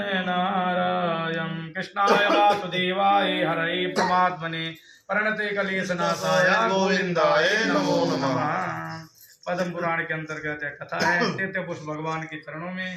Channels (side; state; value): both; identical; correlation 1.00